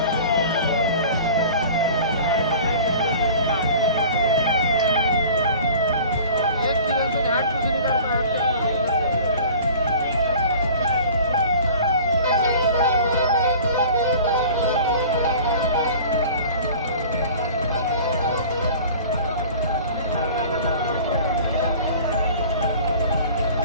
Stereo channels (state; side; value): inverted; both; correlation -0.43